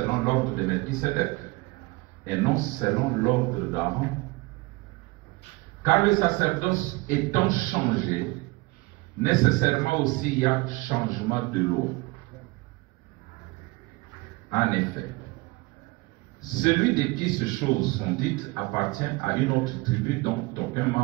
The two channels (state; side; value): quieter; left; 23.9 dB